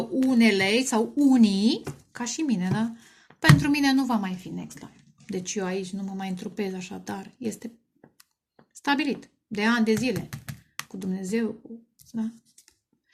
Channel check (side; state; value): both; identical; correlation 1.00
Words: sau unii, ca și mine, da? Pentru mine nu va mai fi next life. Deci eu aici nu mă mai întrupez așa, dar este stabilit. De ani de zile. Cu Dumnezeu, da?